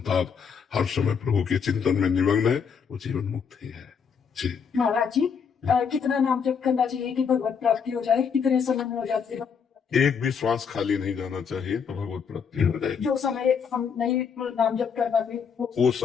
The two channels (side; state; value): right; quieter; 6.6 dB